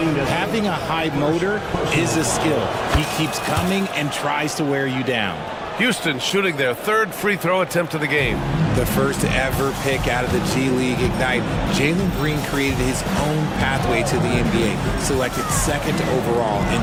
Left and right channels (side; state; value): both; identical; correlation 1.00